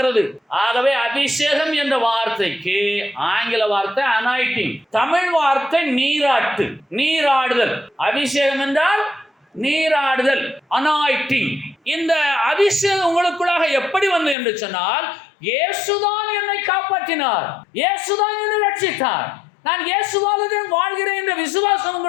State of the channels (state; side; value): drops out; right; at 14.4 s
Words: ஆகவே அபிஷேகம் என்ற வார்த்தைக்கு ஆங்கில வார்த்தை அனாயிட்டிங், தமிழ் வார்த்தை நீராட்டு, நீராடுதல். அபிஷேகம் என்றால் நீராடுதல், அனாயிட்டிங். இந்த அபிஷேகம் உங்களுக்குள்ளாக எப்படி வந்தது என்று சொன்னால், இயேசுதான் என்னை காப்பாற்றினார், இயேசுதான் என்னை ரட்சித்தார், நான் இயேசுவாலே வாழ்கிறேன் என்ற விசுவாசம்